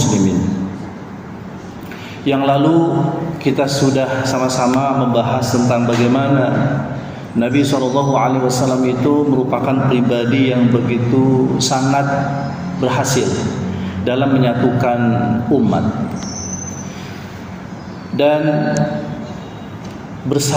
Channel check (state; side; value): identical; both; correlation 1.00